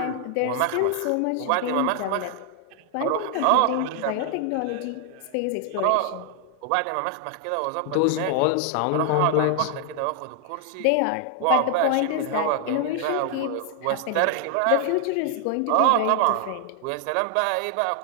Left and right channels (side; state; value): both; different; correlation 0.00